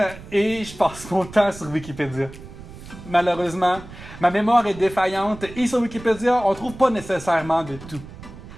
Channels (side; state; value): right; noise; rumble, 16 dB below the sound